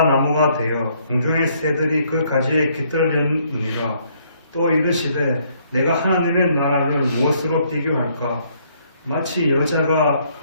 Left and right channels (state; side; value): inverted; both; correlation -0.67